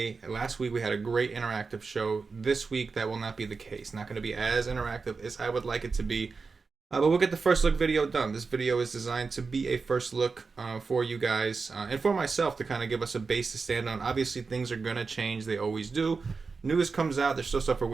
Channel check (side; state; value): left; quieter; 4.6 dB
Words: last week we had a great interactive show. This week that will not be the case. Not going to be as interactive as I would like it to be. But we'll get the first look video done. This video is designed to be a first look for you guys and for myself to kind of give us a base to stand on. Obviously things are going to change. They always do. News comes out. There's still stuff we're